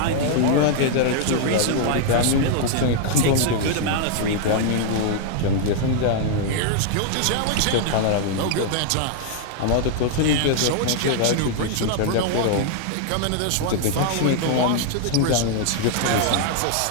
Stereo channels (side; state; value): both; different; correlation -0.01